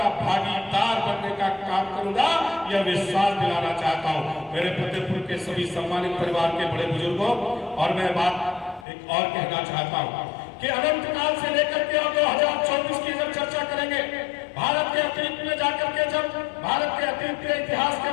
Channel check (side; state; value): right; drops out; at 8.8 s